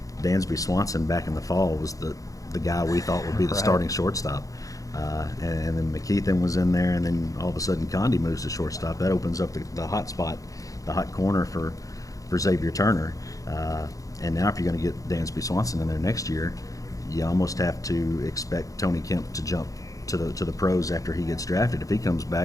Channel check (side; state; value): right; late; 0.17 ms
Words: Dansby Swanson back in the fall was the guy we thought would be the starting shortstop. And then McKeithen was in there, and then all of a sudden Conde moves to shortstop. That opens up the hot spot, the hot corner for Xavier Turner. And now if you're going to get Dansby Swanson in there next year, you almost have to expect Tony Kemp to jump to the pros after he gets drafted. If he comes